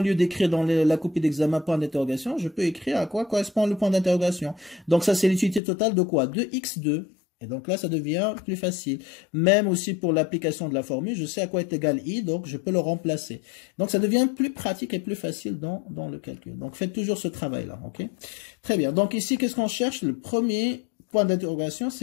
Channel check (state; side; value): drops out; right; at 5.6 s